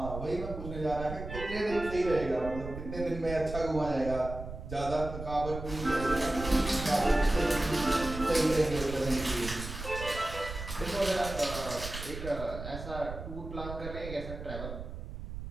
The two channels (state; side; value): noise; right; rumble, 9 dB below the sound